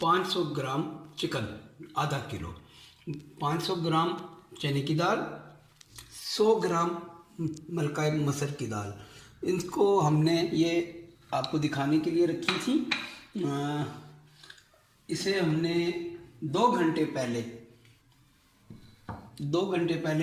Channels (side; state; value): both; identical; correlation 1.00